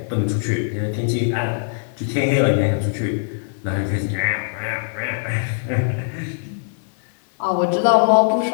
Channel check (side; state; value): right; silent; 62 dB below the other